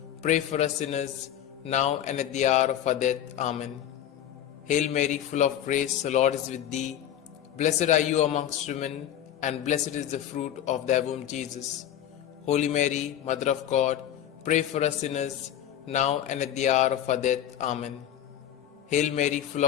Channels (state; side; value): quieter; right; 10.8 dB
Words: pray for us sinners, now and at the hour of our death. Amen. Hail Mary, full of grace, the Lord is with thee. Blessed are you amongst women, and blessed is the fruit of thy womb, Jesus. Holy Mary, Mother of God, pray for us sinners, now and at the hour of our death. Amen. Hail Mary, full